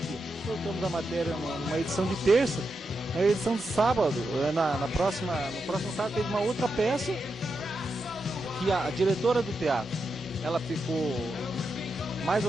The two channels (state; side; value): normal; both; correlation 0.86